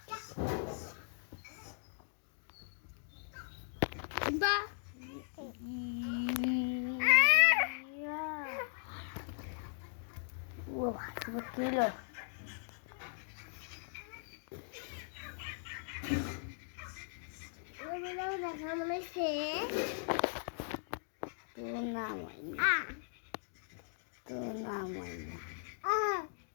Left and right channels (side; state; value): right; silent; digital silence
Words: বা ও কিলো দেখা মনে হচ্ছে তোর নাম হয় না তোর নাম হয় না